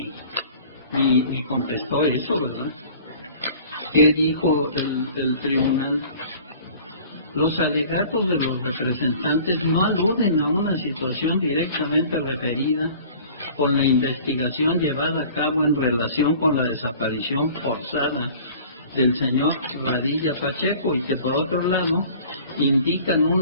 ni contestó eso, ¿verdad? ¿Qué dijo el tribunal? Los alegatos de los representantes no aluden a una situación directamente referida con la investigación llevada a cabo en relación con la desaparición forzada del señor Padilla Pacheco y que por otro lado indican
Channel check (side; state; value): both; inverted; correlation -0.47